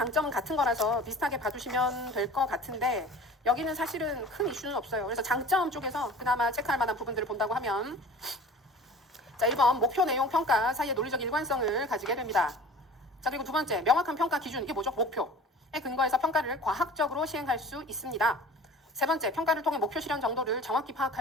같은 거라서 비슷하게 봐주시면 될 것 같은데 여기는 사실은 큰 이슈는 없어요. 그래서 장점 쪽에서 그나마 체크할 만한 부분들을 본다고 하면 자, 1번 목표 내용 평가 사이의 논리적 일관성을 가지게 됩니다. 자, 그리고 두 번째 명확한 평가 기준, 이게 뭐죠? 목표에 근거해서 평가를 과학적으로 시행할 수 있습니다. 세 번째, 평가를 통해 목표 실현 정도를 정확히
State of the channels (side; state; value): both; normal; correlation 0.42